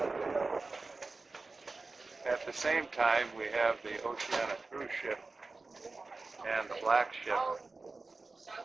At the same time, we have the Oceania cruise ship and the black ship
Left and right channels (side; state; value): left; quieter; 3.7 dB